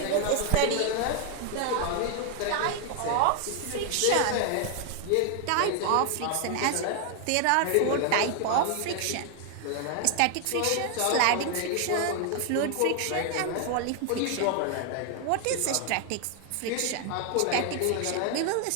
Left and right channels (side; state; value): both; different; correlation 0.00